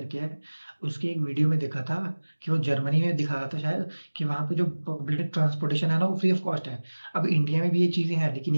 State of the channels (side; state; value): both; inverted; correlation -1.00